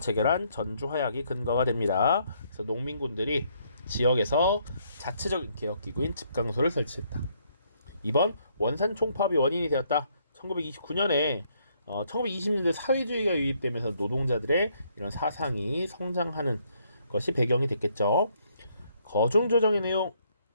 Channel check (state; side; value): inverted; both; correlation -0.70